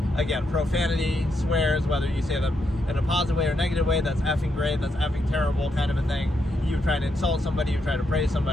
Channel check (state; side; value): normal; both; correlation 0.81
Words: again, profanity, swears, whether you say them in a positive way or negative way, that's effing great, that's effing terrible kind of a thing. You try to insult somebody, you try to praise